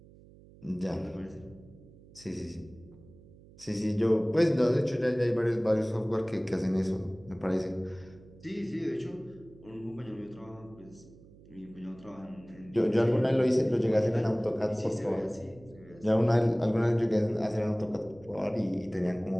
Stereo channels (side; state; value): right; noise; hum, 23 dB below the sound